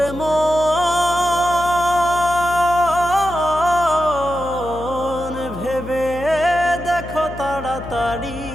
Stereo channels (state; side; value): noise; left; hum, 12 dB below the sound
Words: মন ভেবে দেখো তাড়াতাড়ি